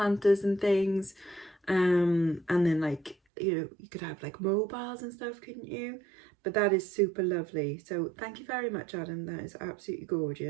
and things. And then like, you know, you could have like mobiles and stuff, couldn't you? But that is super lovely. So thank you very much, Adam. That is absolutely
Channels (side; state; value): left; drops out; at 3.2 s